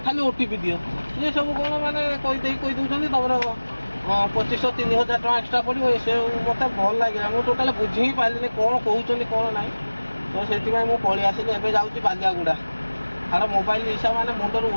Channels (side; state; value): both; inverted; correlation -1.00